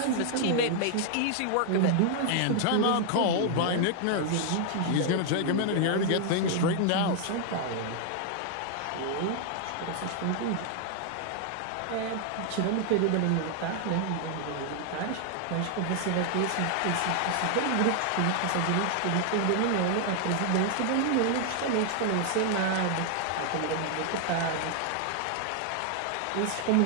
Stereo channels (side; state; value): both; different; correlation 0.00